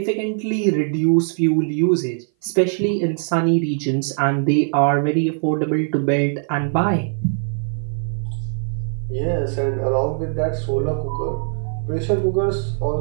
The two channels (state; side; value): silent; left; 58 dB below the other